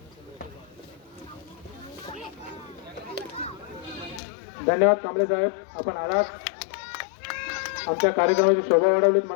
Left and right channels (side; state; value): right; drops out; at 4.2 s